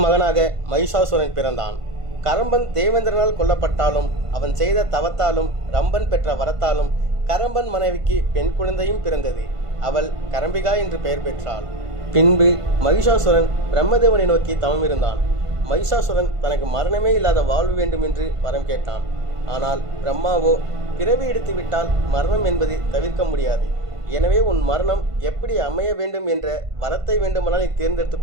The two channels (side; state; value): left; late; 1.5 ms